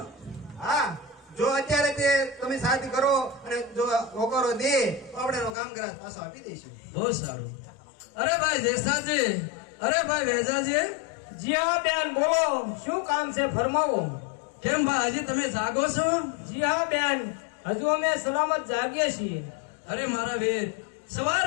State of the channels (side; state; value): right; drops out; at 5.6 s